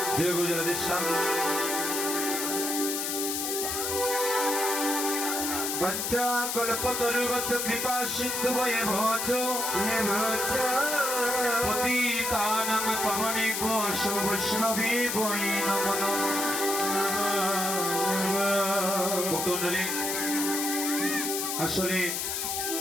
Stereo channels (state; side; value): noise; left; hiss, 1 dB below the sound